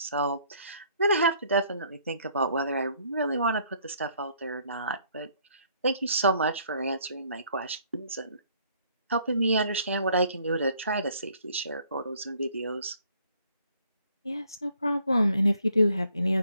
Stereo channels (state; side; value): inverted; both; correlation -0.63